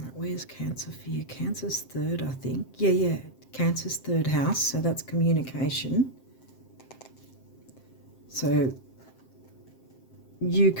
where's Cancer for you? Cancer's 3rd, I think. Yeah. Cancer's 3rd house, so that's communication. So you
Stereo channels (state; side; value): late; right; 7.6 ms